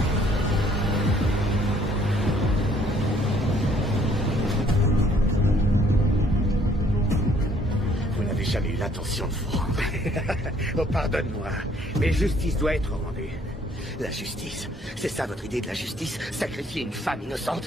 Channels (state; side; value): normal; both; correlation 0.62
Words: Vous n'avez jamais eu l'intention de vous rendre. Oh, pardonne-moi, mais justice doit être rendue. La justice, c'est ça votre idée de la justice? Sacrifier une femme